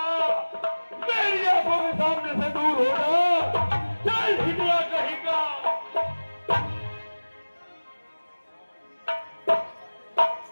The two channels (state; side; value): inverted; both; correlation -1.00